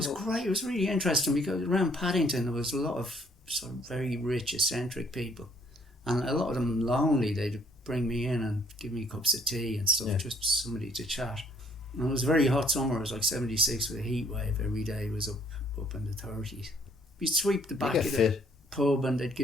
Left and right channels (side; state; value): both; normal; correlation 0.63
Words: great. It was really interesting because around Paddington there was a lot of sort of very rich, eccentric people. And a lot of them lonely. They'd bring me in and give me cups of tea and stuff, just somebody to chat. And it was a very hot summer. It was like 76 with a heat wave. Every day was up in the 30s. You'd sweep the back of the pub and they'd